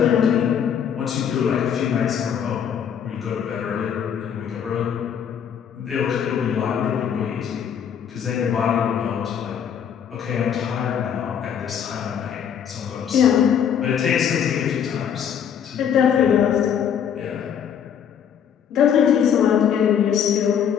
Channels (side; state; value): right; quieter; 8.3 dB